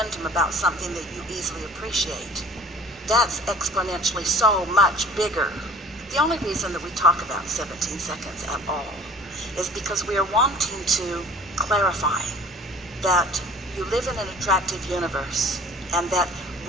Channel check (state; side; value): normal; both; correlation 0.47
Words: about something that you easily appreciate. That's exponentially so much bigger. The only reason that we talk about 17 seconds at all is because we are wanting to clarify that you live in an attractive universe, and that